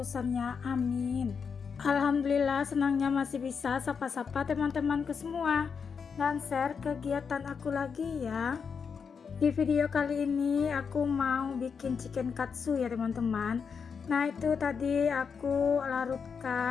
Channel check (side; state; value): right; quieter; 6.1 dB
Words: Amin. Alhamdulillah, senangnya masih bisa sapa-sapa teman-temanku semua dan share kegiatan aku lagi ya. Di video kali ini aku mau bikin chicken katsu ya teman-teman. Nah itu tadi aku